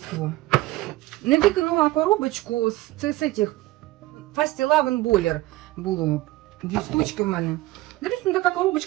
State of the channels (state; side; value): quieter; left; 17.9 dB